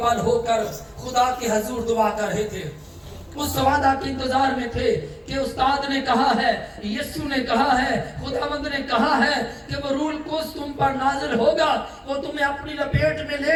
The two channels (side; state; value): both; identical; correlation 1.00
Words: بل ہو کر خدا کے حضور دعا کر رہے تھے، اس وعدہ کے انتظار میں تھے کہ استاد نے کہا ہے، یسوع نے کہا ہے، خداوند نے کہا ہے کہ وہ روح القدس تم پر نازل ہوگا، وہ تمہیں اپنی لپیٹ میں